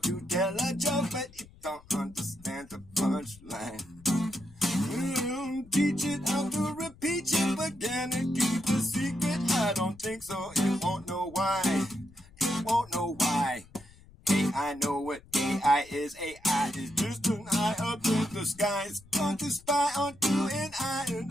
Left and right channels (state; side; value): noise; left; rumble, 24 dB below the sound